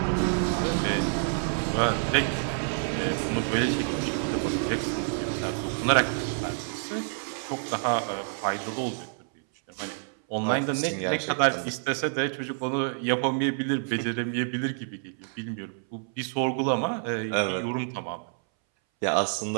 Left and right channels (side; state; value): left; silent; 59 dB below the other